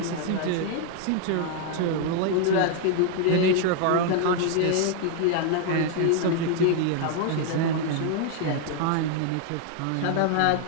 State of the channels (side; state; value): both; different; correlation 0.00